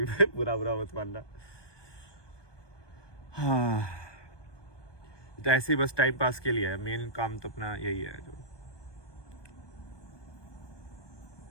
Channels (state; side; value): late; right; 1.2 ms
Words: बुरा मत मानना। हाँ, तो ऐसे ही बस टाइम पास के लिए है, मेन काम तो अपना यही है। जो